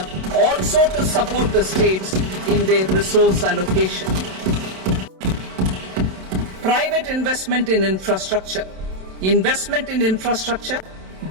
also to support the states in their resource allocation. Private investment in infrastructure. Investment in infrastructure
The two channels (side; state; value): left; late; 27 ms